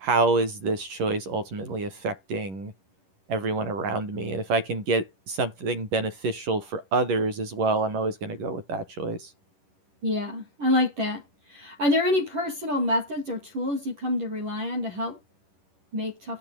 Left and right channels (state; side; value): late; left; 11 ms